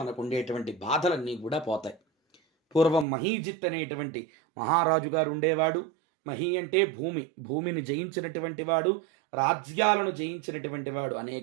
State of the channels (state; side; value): drops out; left; at 3.1 s